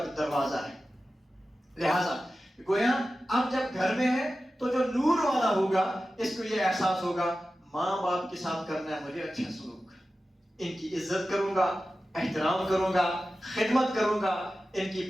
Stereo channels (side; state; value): both; normal; correlation 0.94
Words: دروازہ ہے. لہذا گویا اب جب گھر میں ہے تو جو نور والا ہوگا اس کو یہ احساس ہوگا ماں باپ کے ساتھ کرنا ہے مجھے اچھا سلوک، ان کی عزت کروں گا، احترام کروں گا، خدمت کروں گا، ان کی